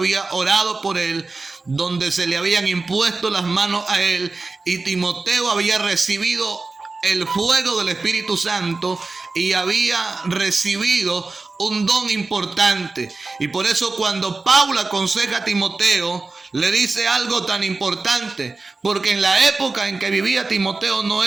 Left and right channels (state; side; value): quieter; left; 3.7 dB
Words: orado por él, donde se le habían impuesto las manos a él, y Timoteo había recibido el fuego del Espíritu Santo y había recibido un don importante. Y por eso cuando Pablo aconseja a Timoteo, le dice algo tan importante, porque en la época en que vivía Timoteo no